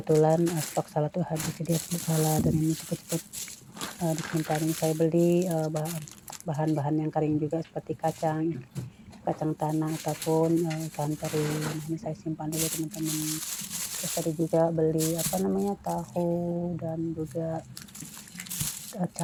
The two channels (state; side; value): identical; both; correlation 1.00